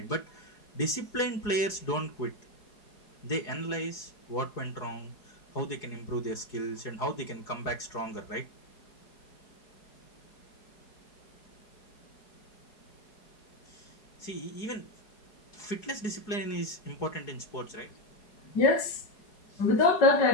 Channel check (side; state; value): right; late; 4.8 ms